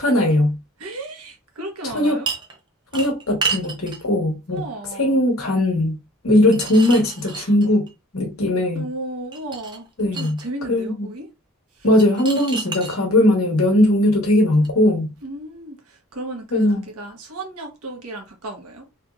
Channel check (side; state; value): both; normal; correlation 0.53